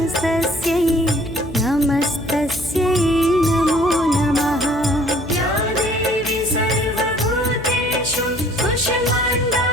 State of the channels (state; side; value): noise; left; hum, 13 dB below the sound